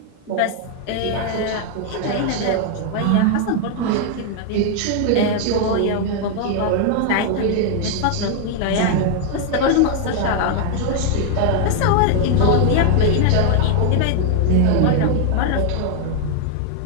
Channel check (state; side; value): different; both; correlation 0.00